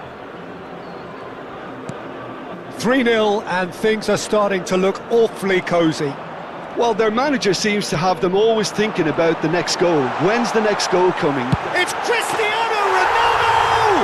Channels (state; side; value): identical; both; correlation 1.00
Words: 3-0 and things are starting to look awfully cosy. Well, their manager seems to have them always thinking about the next goal. When's the next goal coming? It's Cristiano